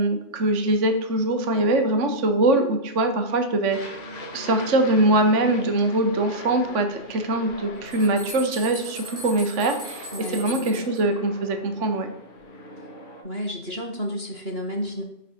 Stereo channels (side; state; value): left; late; 3.5 ms